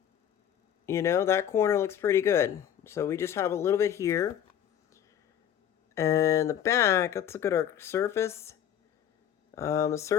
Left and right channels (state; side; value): quieter; right; 9.8 dB